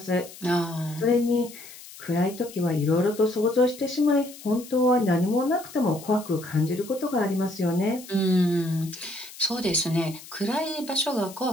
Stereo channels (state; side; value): noise; left; hiss, 17 dB below the sound